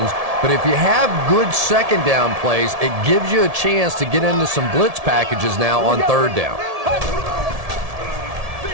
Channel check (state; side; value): late; left; 1.7 ms